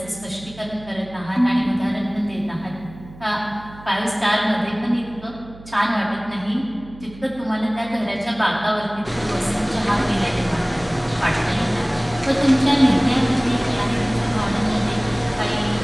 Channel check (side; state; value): right; noise; hum, 19 dB below the sound